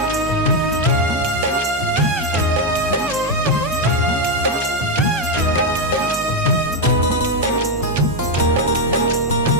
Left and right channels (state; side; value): normal; both; correlation 0.06